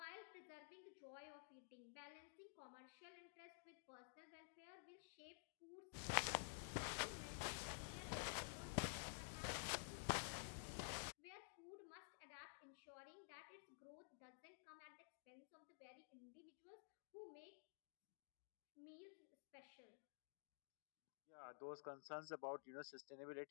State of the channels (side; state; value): right; silent; digital silence